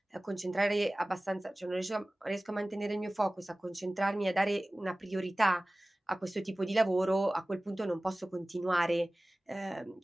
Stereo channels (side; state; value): both; normal; correlation 0.97